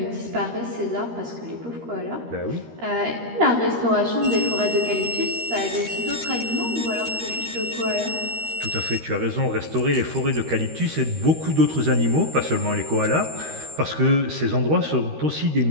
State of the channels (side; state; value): left; late; 13 ms